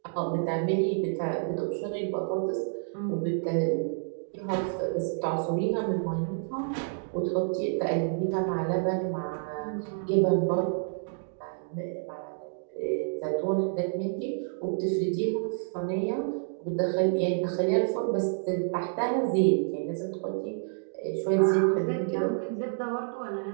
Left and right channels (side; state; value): left; silent; digital silence